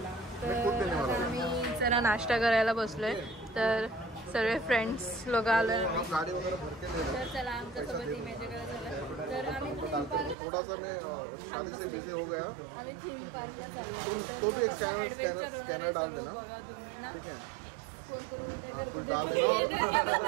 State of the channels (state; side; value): drops out; left; at 10.4 s